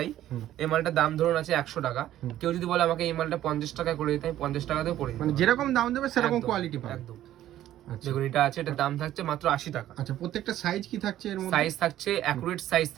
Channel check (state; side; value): quieter; left; 12.9 dB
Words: মালটার দাম ধরুন আছে 100 টাকা, কেউ যদি বলে আমাকে এই মালটা 50 টাকা করে দিতে, আমি 50 টাকাতেও করে দিই। মানে যেরকম দাম দেবে সেরকম কোয়ালিটি পাবে একদম। দেখুন, এটা আছে, এটার দাম থাকছে মাত্র 80 টাকা। আচ্ছা, প্রত্যেকটা সাইজ কি থাকছে এর মধ্যে? সাইজ থাকছে অ্যাকুরেট সাইজ